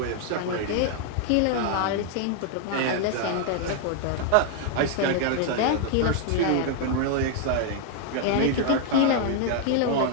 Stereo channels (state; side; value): different; both; correlation 0.00